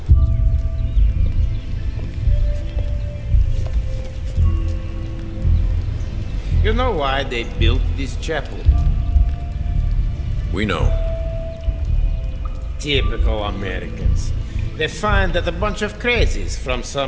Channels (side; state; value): both; identical; correlation 1.00